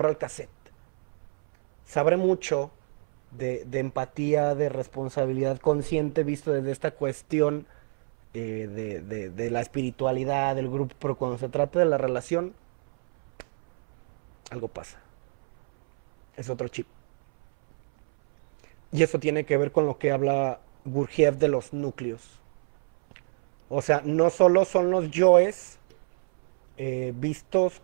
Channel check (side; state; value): left; silent; 61 dB below the other